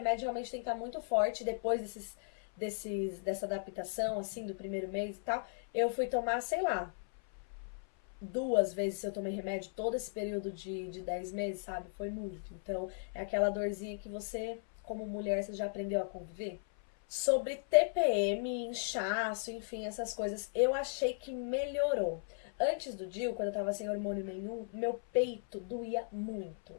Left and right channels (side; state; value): right; silent; 54 dB below the other